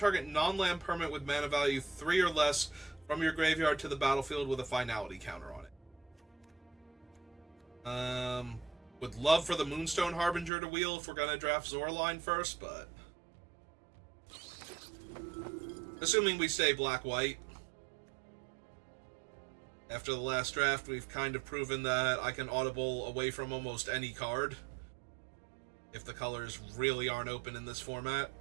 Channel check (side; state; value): left; drops out; at 10.5 s